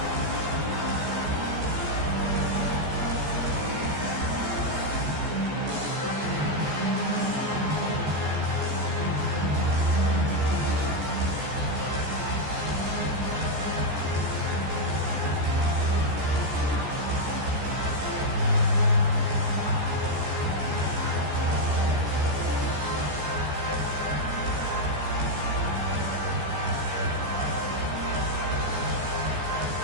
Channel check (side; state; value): left; late; 14 ms